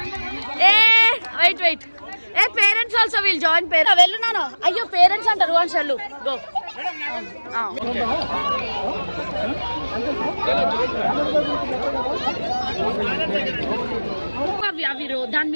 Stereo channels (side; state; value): both; inverted; correlation -1.00